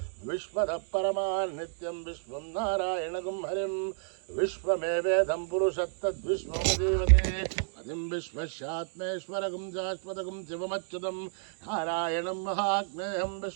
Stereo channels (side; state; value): left; silent; digital silence